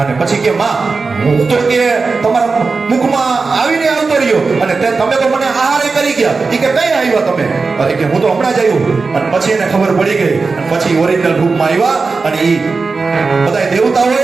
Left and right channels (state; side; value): quieter; left; 4.3 dB